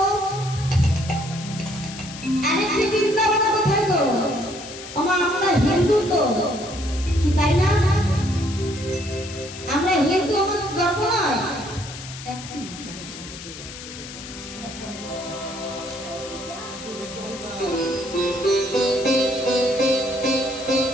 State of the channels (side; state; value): left; noise; hiss, 13 dB below the sound